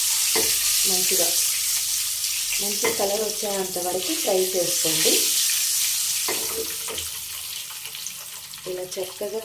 మంచిగా మంచి కలర్ వచ్చేంత వరకు ఫ్రై చేసుకోండి. ఇలా చక్కగా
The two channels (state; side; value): identical; both; correlation 1.00